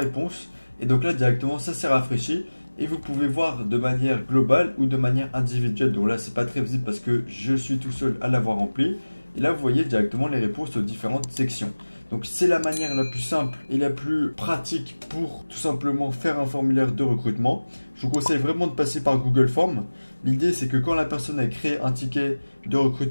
et donc là directement ça s'est rafraîchi et vous pouvez voir de manière globale ou de manière individuelle. Donc là c'est pas très visible parce que je suis tout seul à l'avoir rempli. Et là vous voyez directement les réponses aux différentes sections. Donc c'est la manière la plus simple et la plus pratique pour tout simplement faire un formulaire de recrutement. Je vous conseille vraiment de passer par Google Forms. L'idée c'est que quand la personne a créé un ticket de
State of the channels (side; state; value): both; inverted; correlation -1.00